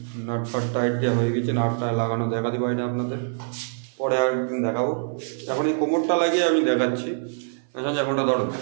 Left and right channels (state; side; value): silent; left; 62 dB below the other